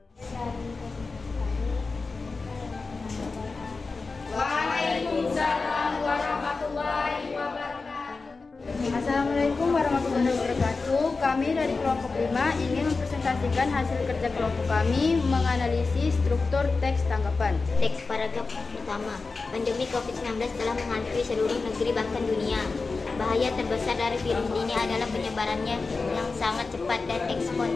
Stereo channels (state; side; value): quieter; right; 4.1 dB